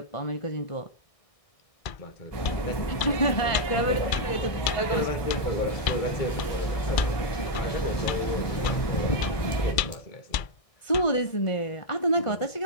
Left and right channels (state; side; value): late; right; 1.6 ms